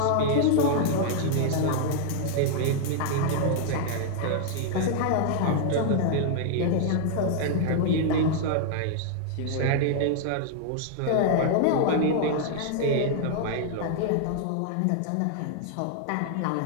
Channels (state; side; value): different; both; correlation -0.01